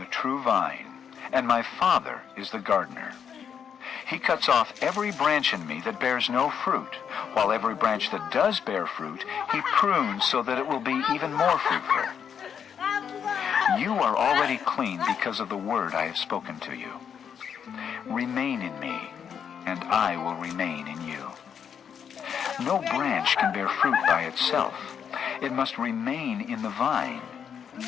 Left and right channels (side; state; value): right; quieter; 7.7 dB